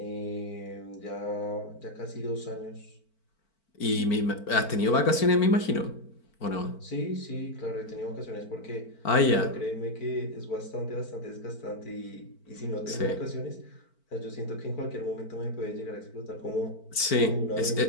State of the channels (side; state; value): right; late; 4.5 ms